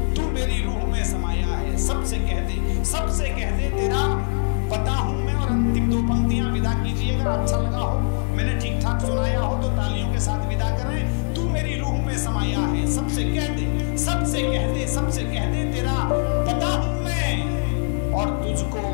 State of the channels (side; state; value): right; silent; digital silence